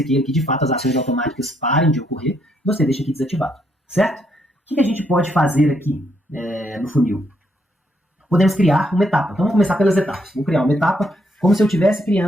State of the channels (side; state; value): both; normal; correlation 0.74